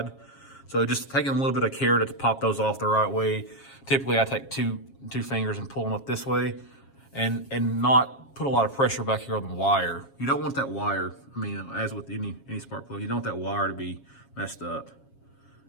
So just taking a little bit of care to pop those off the right way. Typically I take two fingers and pull them up this way, and not put a lot of pressure back here on the wire. You don't want that wire, I mean, as with any spark plug, you don't want that wire to be messed up.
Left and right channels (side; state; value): right; late; 7.3 ms